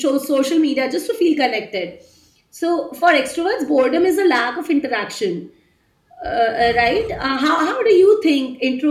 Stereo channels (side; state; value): both; identical; correlation 1.00